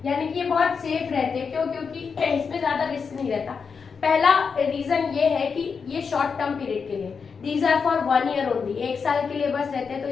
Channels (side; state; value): right; quieter; 5.7 dB